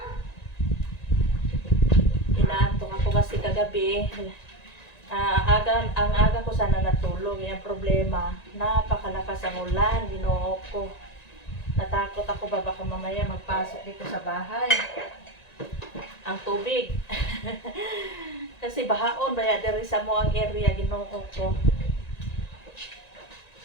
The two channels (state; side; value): late; right; 1.9 ms